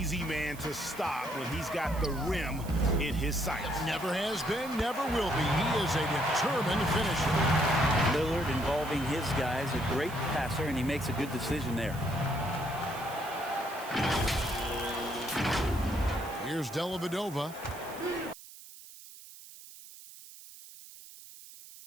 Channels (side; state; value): right; noise; hiss, 17 dB below the sound